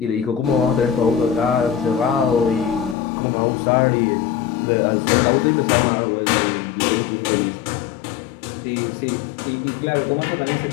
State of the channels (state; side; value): drops out; right; at 3.0 s